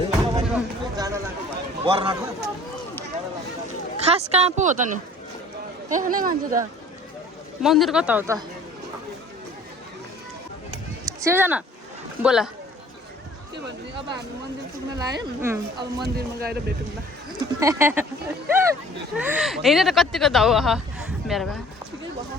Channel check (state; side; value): normal; both; correlation 0.50